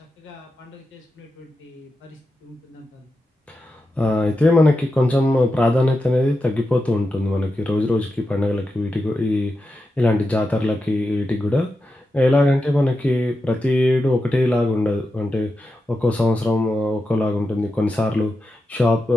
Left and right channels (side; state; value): both; normal; correlation 0.89